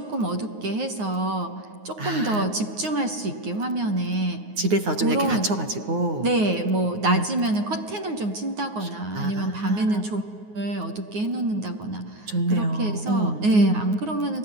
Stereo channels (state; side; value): late; left; 9.5 ms